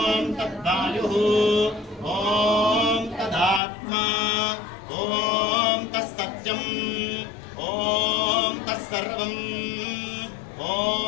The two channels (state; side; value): drops out; right; at 3.6 s